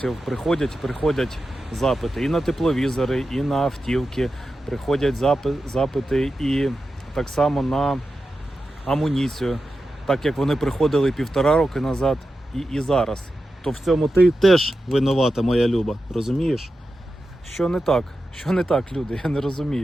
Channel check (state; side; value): normal; both; correlation 0.91